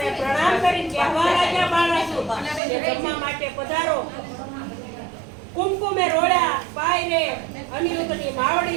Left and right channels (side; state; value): left; drops out; at 2.6 s